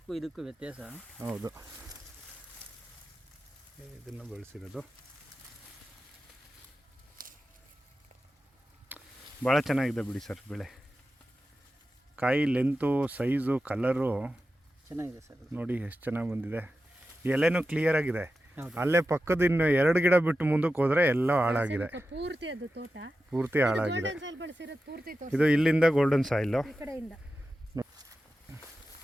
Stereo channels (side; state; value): both; normal; correlation 0.92